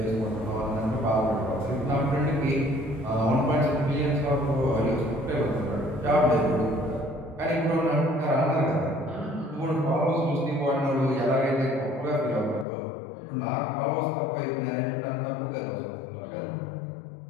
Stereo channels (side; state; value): right; drops out; at 12.7 s